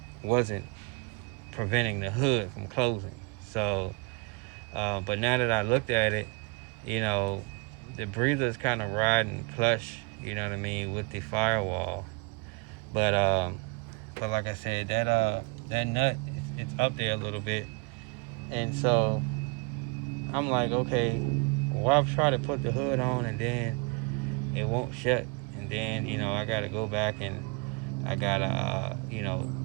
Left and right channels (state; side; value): quieter; left; 30.4 dB